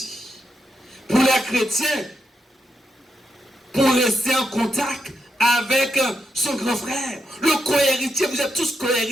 Pour les chrétiens, pour rester en contact avec son grand frère, le co-héritier, vous êtes tous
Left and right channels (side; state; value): both; normal; correlation 0.85